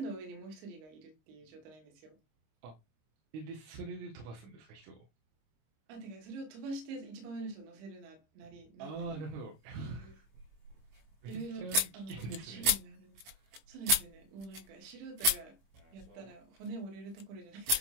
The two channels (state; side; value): late; left; 25 ms